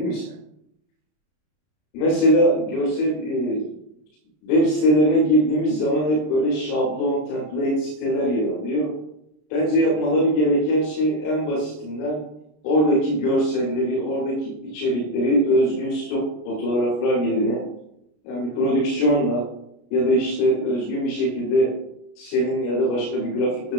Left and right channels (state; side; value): late; right; 33 ms